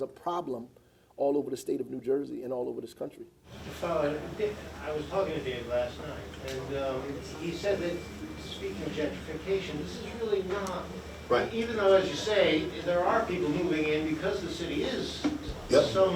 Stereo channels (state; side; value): identical; both; correlation 1.00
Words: a problem all over the state of New Jersey and all over this country. I was talking to Dave last night, and he said that, speaking of gentrification, this is really not, Right. even though, as you say, there are people moving in because the city is Yep.